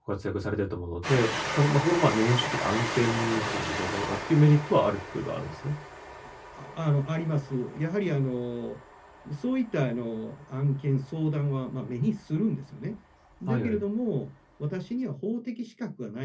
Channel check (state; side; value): identical; both; correlation 1.00